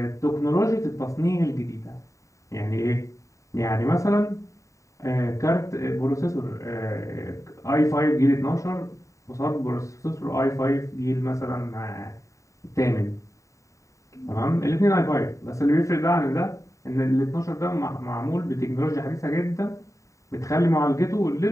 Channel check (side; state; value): right; late; 0.16 ms